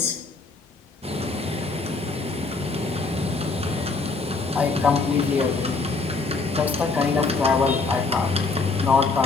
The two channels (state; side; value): quieter; right; 4.0 dB